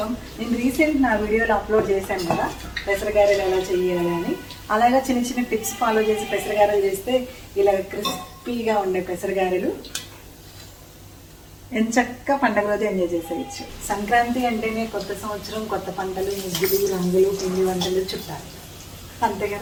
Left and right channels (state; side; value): identical; both; correlation 1.00